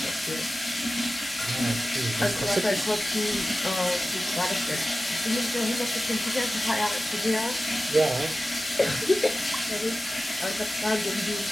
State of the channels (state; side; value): normal; both; correlation 0.95